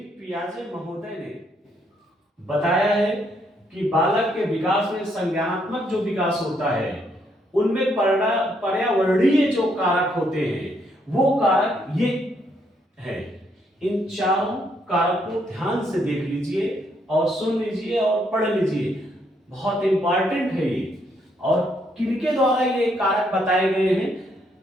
पियाजे महोदय ने बताया है कि बालक के विकास में संज्ञानात्मक जो विकास होता है उनमें पर्यावरणीय जो कारक होते हैं वो कारक ये है। इन चारों कारक को ध्यान से देख लीजिए और सुन लीजिए और पढ़ लीजिए, बहुत इंपॉर्टेंट है ये। और किनके द्वारा ये कारक बताए गए हैं?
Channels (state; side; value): normal; both; correlation 0.73